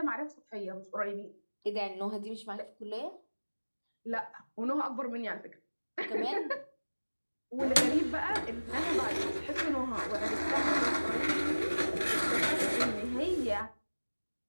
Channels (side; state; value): both; inverted; correlation -1.00